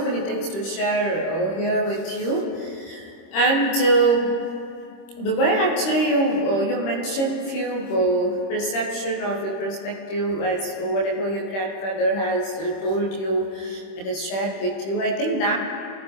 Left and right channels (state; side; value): late; right; 26 ms